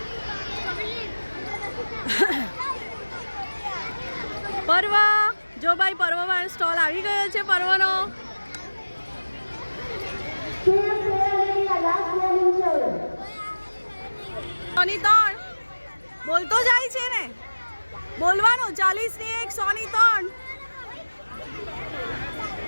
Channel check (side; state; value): both; inverted; correlation -1.00